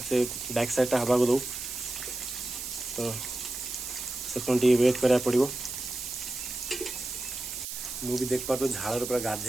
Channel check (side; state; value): right; noise; hiss, 7 dB below the sound